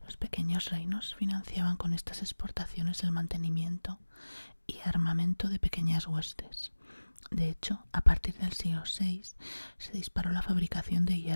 Los pequeños reinos financiaban con estas exportaciones el mantenimiento y armamento de pequeñas huestes, De hecho, a partir del siglo VI se disparó la fabricación de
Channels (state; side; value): inverted; both; correlation -1.00